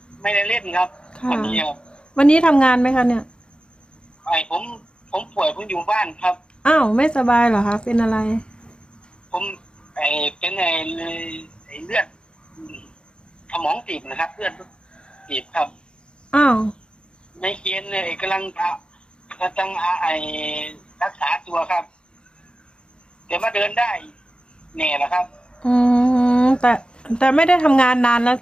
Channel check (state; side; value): late; right; 0.052 ms